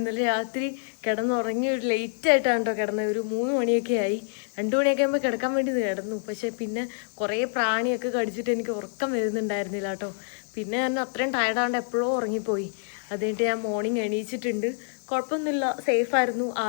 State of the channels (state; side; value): silent; right; digital silence